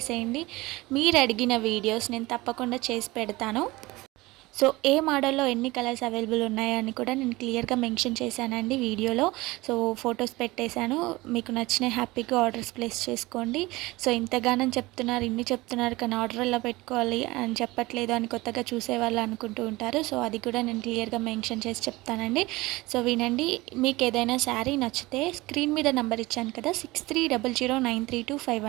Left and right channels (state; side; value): quieter; left; 20.7 dB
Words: మీరు అడిగిన వీడియోస్ నేను తప్పకుండా చేసి పెడతాను. సో ఏ మోడల్లో ఎన్ని కలర్స్ అవైలబుల్ ఉన్నాయని కూడా నేను క్లియర్గా మెన్షన్ చేశానండి వీడియోలో. సో ఫొటోస్ పెట్టేశాను. మీకు నచ్చిన హ్యాపీగా ఆర్డర్స్ ప్లేస్ చేసుకోండి. సో ఇంతగానం చెప్తున్నారు, ఇన్ని చెప్తున్నారు, కానీ ఆర్డర్ ఎలా పెట్టుకోవాలి అని చెప్పట్లేదు అని కొత్తగా చూసేవాళ్ళు అనుకుంటూ ఉంటారు. సో అది కూడా నేను క్లియర్గా మెన్షన్ చేసి చెప్తానండి. సో వినండి. మీకు ఏదైనా శారీ నచ్చితే స్క్రీన్ మీద నెంబర్ ఇచ్చాను కదా,